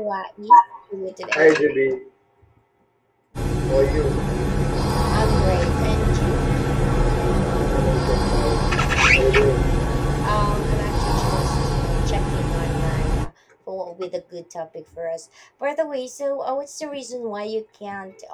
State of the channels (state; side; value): identical; both; correlation 1.00